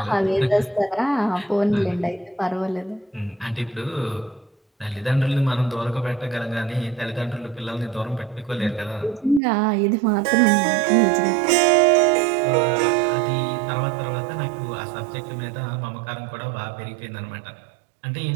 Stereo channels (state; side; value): drops out; left; at 9.4 s